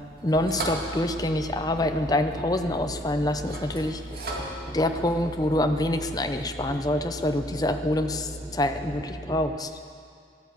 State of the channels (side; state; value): both; normal; correlation 0.62